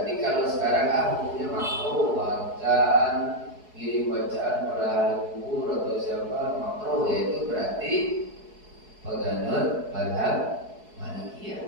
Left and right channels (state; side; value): late; left; 4.7 ms